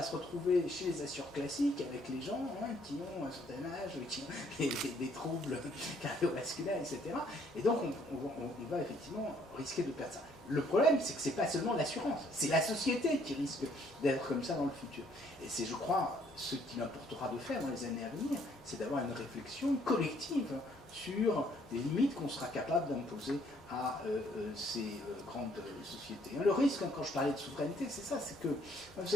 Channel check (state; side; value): normal; both; correlation 0.65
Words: se retrouver chez les assureurs classiques avec les gens qui ont un certain âge, qui ont des troubles cardiovasculaires, etc. Et donc, on va effectivement risquer de perdre ça. Le problème, c'est que ce n'est pas seulement l'assurance, c'est la société qui risque d'être comme ça dans le futur. Et c'est, je crois, ce qu'il importera de faire dans les années à venir, c'est d'avoir une réflexion collective sur les limites qu'on sera capable d'imposer à ces grandes sociétés. Le risque, quand je parlais de souveraineté, c'est ça, c'est que, vous